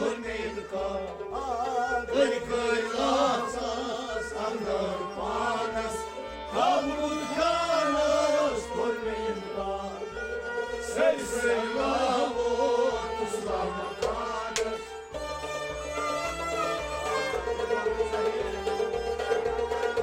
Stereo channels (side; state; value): both; identical; correlation 1.00